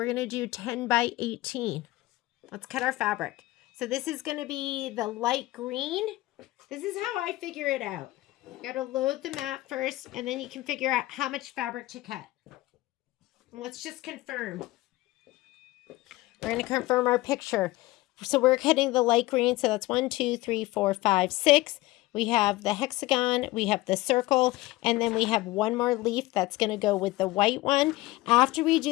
going to do 10 by 18. Let's cut our fabric. So this is going to be the light green. This is how I figure it out. You got to load the mat first, and then you can figure out how much fabric to cut. And let's just confirm. We're going to confirm our picture. So we're cutting the light green. So that's 1, 2, 3, 4, 5, 6. We have the hexagon, we have the circle, and then we have one more leaf that's going to go with the white one. After we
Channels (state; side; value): quieter; right; 18.9 dB